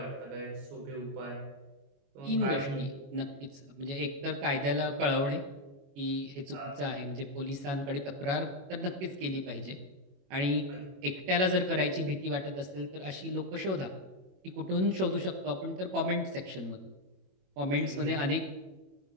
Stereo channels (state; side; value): late; left; 21 ms